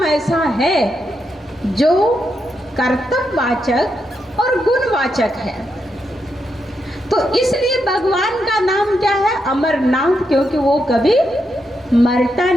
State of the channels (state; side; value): normal; both; correlation 0.83